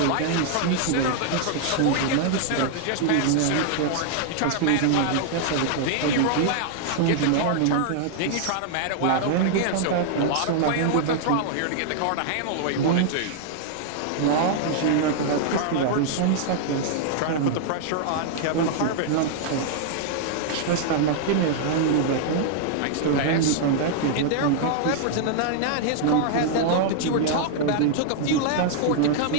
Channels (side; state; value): both; different; correlation -0.01